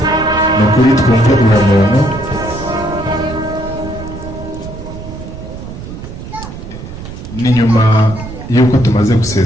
ni ukuri twumve uwo muntu. Ni nyuma y'uko tumaze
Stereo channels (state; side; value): noise; right; rumble, 11 dB below the sound